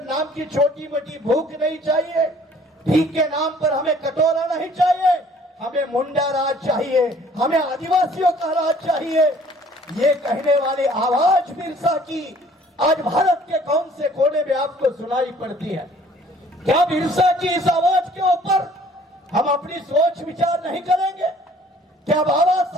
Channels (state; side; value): normal; both; correlation 0.56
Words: नाम की छोटी मोटी भूख नहीं चाहिए, भीख के नाम पर हमें कटोरा नहीं चाहिए, हमें मुंडा राज चाहिए, हमें आदिवासियों का राज चाहिए। ये कहने वाली आवाज बिरसा की आज भारत के कौन से कोने में आपको सुनाई पड़ती है? क्या बिरसा की इस आवाज के ऊपर हम अपनी सोच विचार नहीं करेंगे? क्या बाबा